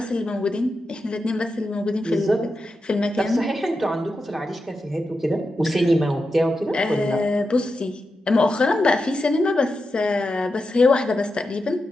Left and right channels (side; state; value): both; normal; correlation 0.89